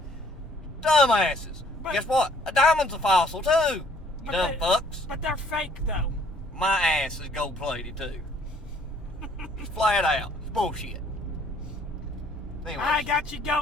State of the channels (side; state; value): both; normal; correlation 0.60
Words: Dumbasses. But, guess what? A diamond's a fossil, too. You dumb fucks. But they're fake, though. My ass is gold-plated, too. It's flat out. It's bullshit. Anyways, I got you